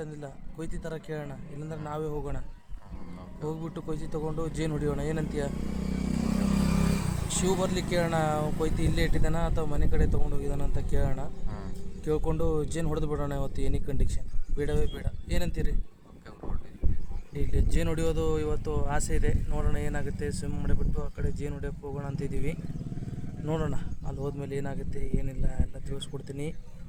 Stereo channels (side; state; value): both; identical; correlation 1.00